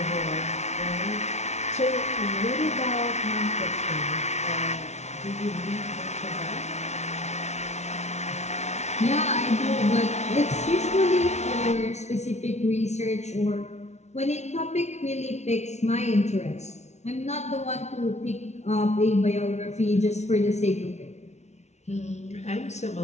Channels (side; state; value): right; late; 0.32 ms